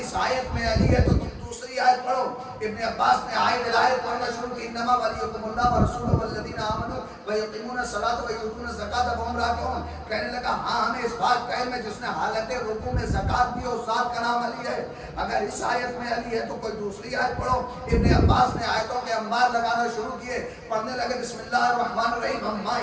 اس آیت میں علی ہے تو تم دوسری آیت پڑھو. ابن عباس نے آیت پڑھنا شروع کی انما ولیکم اللہ ورسولہ والذین آمنوا ویقیمون الصلاۃ ویؤتون الزکاۃ وهم راکعون. کہنے لگا ہاں ہمیں اس بات کا علم ہے جس نے حالت رکوع میں زکات دی اور ذات کا نام علی ہے. اگر اس آیت میں علی ہے تو کوئی دوسری آیت پڑھو. ابن عباس نے آیتوں کے انبار لگانا شروع کیے. پڑھنے لگے بسم اللہ الرحمن الرحیم عما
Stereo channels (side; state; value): both; identical; correlation 1.00